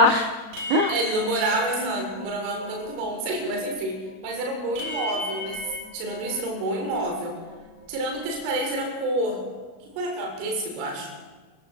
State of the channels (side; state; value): left; late; 37 ms